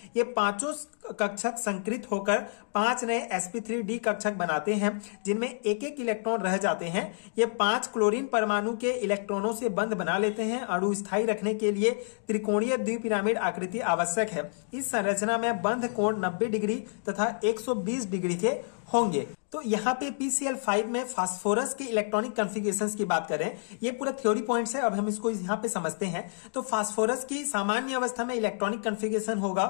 ये पांचों कक्षक संकृत होकर 5 नए sp3d कक्षक बनाते हैं जिनमें एक एक इलेक्ट्रॉन रह जाते हैं। ये 5 क्लोरीन परमाणु के इलेक्ट्रॉनों से बंध बना लेते हैं। अणु स्थायी रखने के लिए त्रिकोणीय द्विपिरामिड आकृति आवश्यक है। इस संरचना में बंध कोण 90 डिग्री तथा 120 डिग्री के होंगे। तो यहाँ पे PCl5 में फास्फोरस के इलेक्ट्रॉनिक कॉन्फ़िगरेशंस की बात करें, ये पूरा थ्योरी पॉइंट्स है। अब हम इसको यहाँ पे समझते हैं। तो फास्फोरस की सामान्य अवस्था में इलेक्ट्रॉनिक कॉन्फ़िगरेशन होगा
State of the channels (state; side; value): silent; right; digital silence